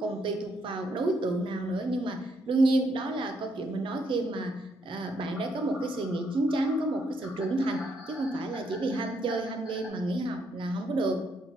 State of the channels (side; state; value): both; normal; correlation 0.74